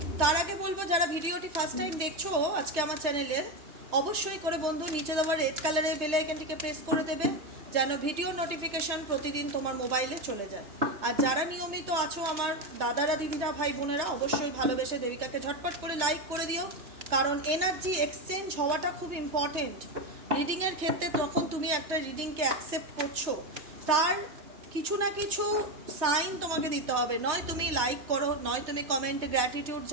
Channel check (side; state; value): left; late; 3.2 ms